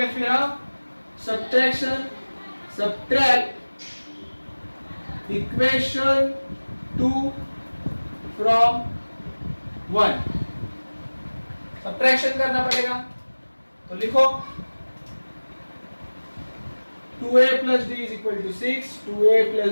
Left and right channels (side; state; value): both; inverted; correlation -1.00